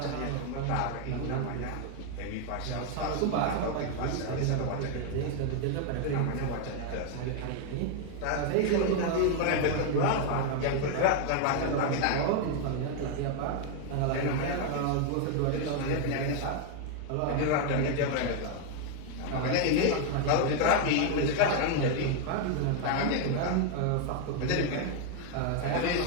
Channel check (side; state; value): both; different; correlation 0.00